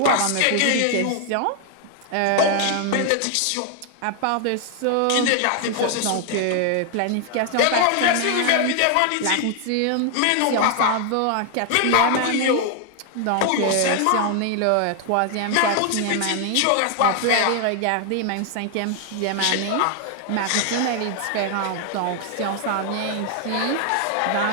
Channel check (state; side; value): different; both; correlation 0.00